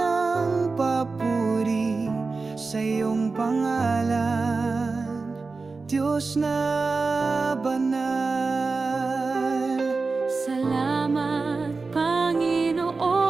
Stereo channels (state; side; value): quieter; left; 4.0 dB